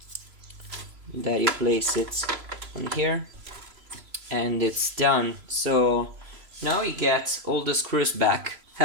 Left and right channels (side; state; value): left; late; 3.0 ms